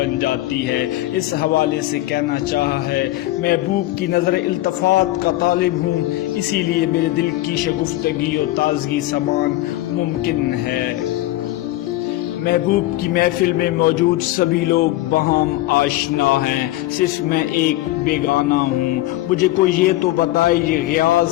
جاتی ہے۔ اس حوالے سے کہنا چاہا ہے، محبوب کی نظر التفات کا طالب ہوں، اسی لیے میرے دل کی شگفتگی و تازگی سمان ممکن ہے۔ محبوب کی محفل میں موجود سبھی لوگ بہم آشنا ہیں، صرف میں ایک بیگانہ ہوں۔ مجھے کوئی یہ تو بتائے، یہ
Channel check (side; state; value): right; quieter; 16.5 dB